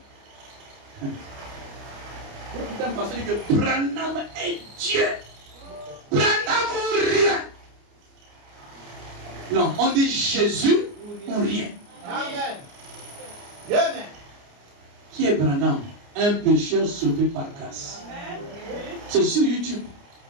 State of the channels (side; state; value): left; late; 29 ms